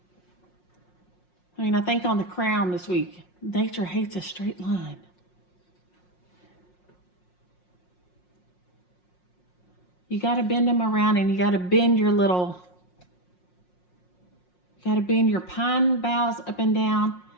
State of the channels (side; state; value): right; late; 5.6 ms